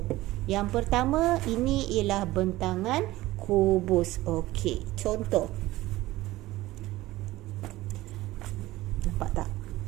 Yang pertama, ini ialah bentangan kubus. Okey. Contoh. Nampak tak?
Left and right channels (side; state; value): left; quieter; 17.5 dB